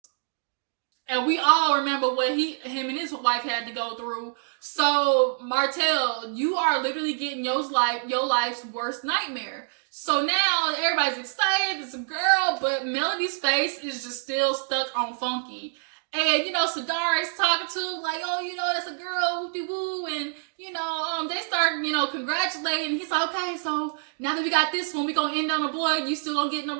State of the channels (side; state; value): left; silent; 61 dB below the other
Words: And we all remember what him and his wife had to go through. So, Martell, you are literally getting your life's worst nightmare. So now everybody's excited. It's a girl, but Melody's face is just still stuck on funky. And, you know, Sadara is talking to, like, oh, you know, that's a girl, whoop-de-woo. And, you know, they start, you know, congratulating. He's like, okay, so now that we got this one, we gonna end on a boy. You still gonna get